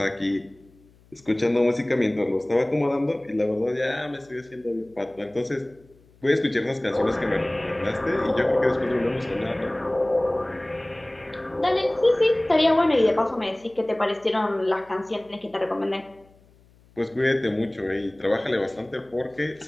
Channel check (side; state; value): left; noise; hum, 29 dB below the sound